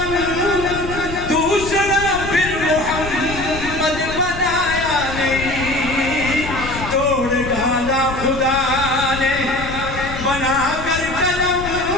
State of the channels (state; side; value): noise; left; rumble, 9 dB below the sound